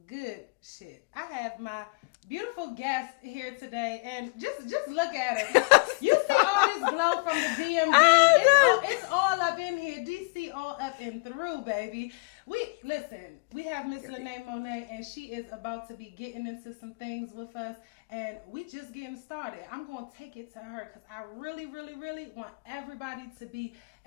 good shit. I have my beautiful guest here today, and just look at her. You see all this glow from the DMV. It's all up in here. DC all up and through, baby. We have Miss Lene Monet, and she is about to be getting into some things with us, and we just getting started. I'm going to take it to her because I really, really, really want everybody to be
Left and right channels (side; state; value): right; quieter; 31.6 dB